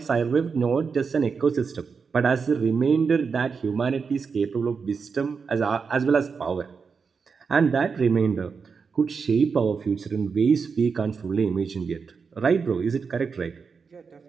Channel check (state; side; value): quieter; left; 5.5 dB